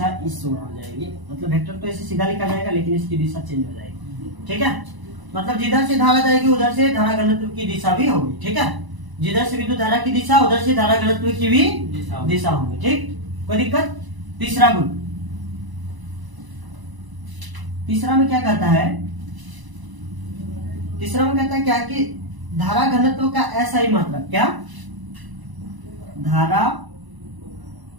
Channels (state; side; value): late; left; 1.0 ms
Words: इस ओर हो जाएगी। मतलब वेक्टर तो ऐसे सीधा लिखा जाएगा, लेकिन इसकी दिशा चेंज हो जाएगी। ठीक है, मतलब जिधर से धारा जाएगी उधर से धारा घनत्व की दिशा भी होगी। ठीक है, जिधर से विद्युत धारा की दिशा, उधर से धारा घनत्व की भी दिशा होगी। ठीक, कोई दिक्कत? तीसरा गुण, तीसरा में क्या कहता है? तीसरा में कहता है क्या कि धारा घनत्व का SI मात्रक, क्या? धारा